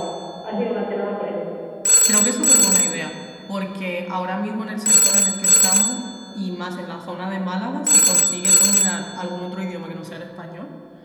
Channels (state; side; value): identical; both; correlation 1.00